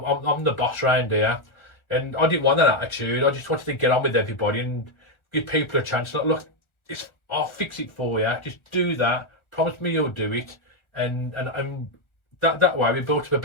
the boss round here. And I didn't want that attitude. I just wanted to get on with everybody and give people a chance. Like, look, I'll fix it for you. Just do that. Promise me you'll do it. And that way we built up a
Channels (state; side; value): late; right; 1.4 ms